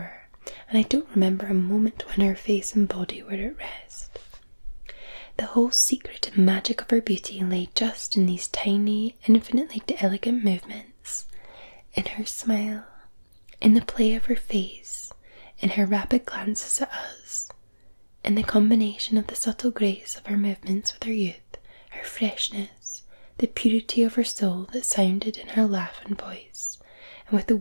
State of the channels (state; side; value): inverted; both; correlation -1.00